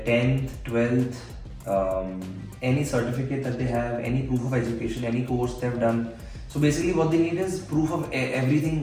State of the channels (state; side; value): identical; both; correlation 1.00